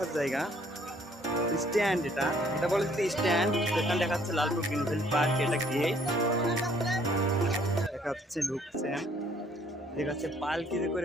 জায়গা। স্ট্যান্ড, এটা এটা বলে যে স্ট্যান্ড। এখানে দেখা যাচ্ছে লালপুর গ্রিনফিল্ড পার্ক, এটা গেট দেখা যাচ্ছে, ঢুকছেন দেখা যাচ্ছে পালকিতে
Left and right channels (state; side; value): normal; both; correlation 0.63